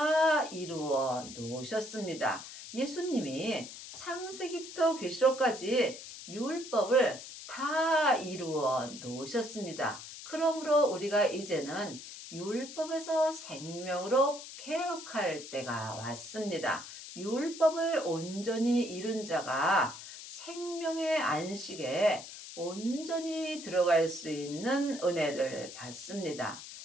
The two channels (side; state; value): left; noise; hiss, 12 dB below the sound